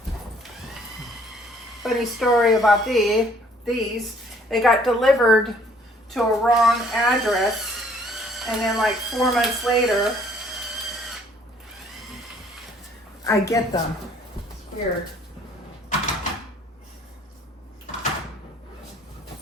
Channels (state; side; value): normal; both; correlation 0.60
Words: Funny story about these. They got delivered to a wrong address, and then like 4 months later, I get them. It's weird.